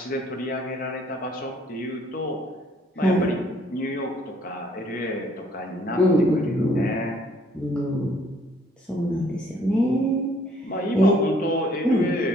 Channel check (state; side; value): normal; both; correlation 0.62